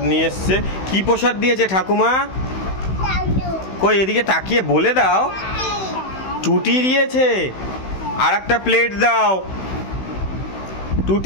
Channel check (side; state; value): right; late; 16 ms